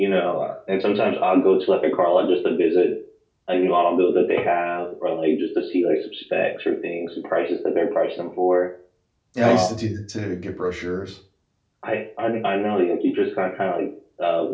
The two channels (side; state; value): both; identical; correlation 1.00